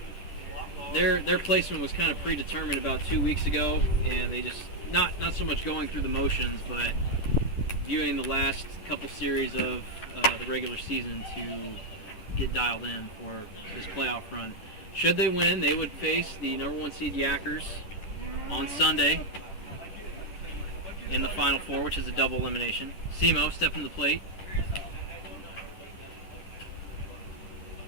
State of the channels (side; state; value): right; late; 10 ms